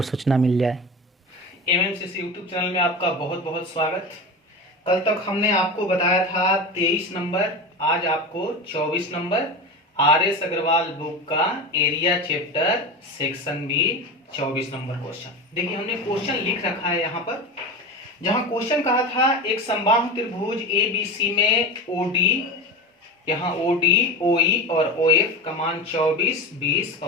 सूचना मिल जाए। एमएमसीसी यूट्यूब चैनल में आपका बहुत बहुत स्वागत। कल तक हमने आपको बताया था 23 नंबर, आज आपको 24 नंबर आर.एस. अग्रवाल बुक का area chapter section B 24 number question. देखिए हमने क्वेश्चन लिख रखा है यहाँ पर, जहाँ क्वेश्चन कहा था एक समबाहु त्रिभुज ABC में OD, यहाँ OD, OE और OF का मान 24, 20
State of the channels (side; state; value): both; normal; correlation 0.26